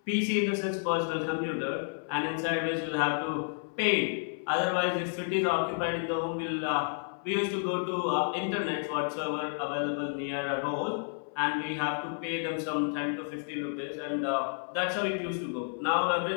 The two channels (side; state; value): right; silent; 57 dB below the other